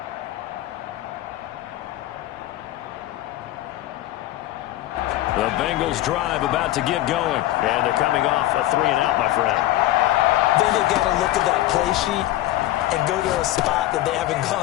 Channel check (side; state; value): right; quieter; 15.3 dB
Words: The Bengals drive about to get going. And they're coming off a 3-and-out, my friend. Then they've got to look at that play sheet and go to a spot that they haven't